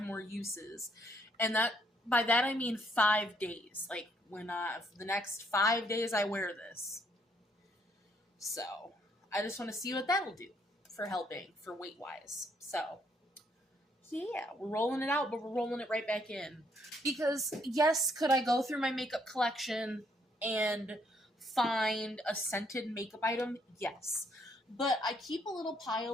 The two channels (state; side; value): normal; both; correlation 0.70